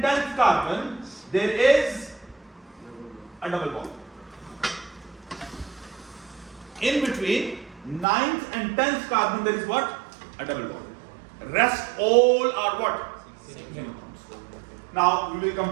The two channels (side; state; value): left; drops out; at 8.1 s